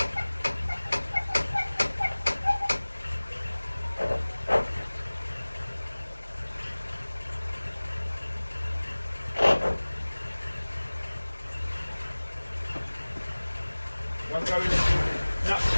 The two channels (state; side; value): inverted; both; correlation -1.00